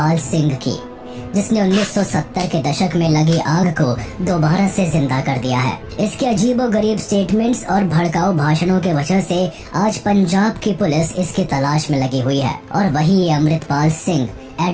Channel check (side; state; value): both; identical; correlation 1.00